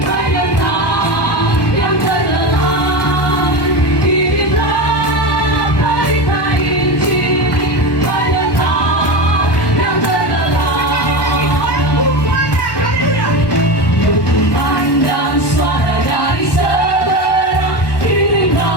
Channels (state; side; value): late; right; 1.2 ms